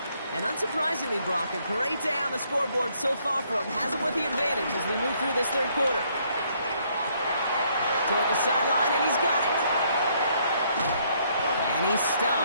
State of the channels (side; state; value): both; inverted; correlation -0.68